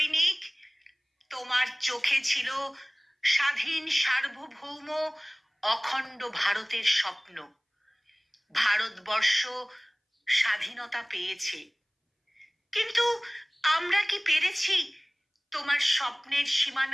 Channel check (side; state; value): both; identical; correlation 1.00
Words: তোমার চোখে ছিল স্বাধীন সার্বভৌম অখণ্ড ভারতের স্বপ্ন। ভারতবর্ষ স্বাধীনতা পেয়েছে, কিন্তু আমরা কি পেরেছি তোমার স্বপ্নের